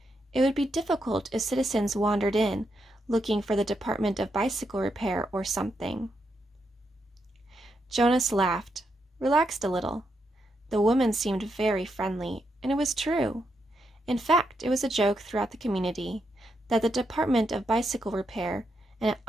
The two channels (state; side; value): normal; both; correlation 0.82